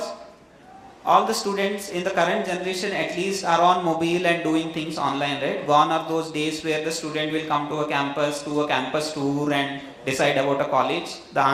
all the students in the current generation at least are on mobile and doing things online, right? Gone are those days where the student will come to a campus, do a campus tour and decide about a college. The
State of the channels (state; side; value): identical; both; correlation 1.00